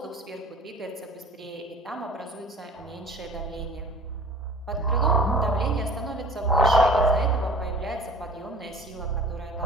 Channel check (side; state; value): both; normal; correlation 0.46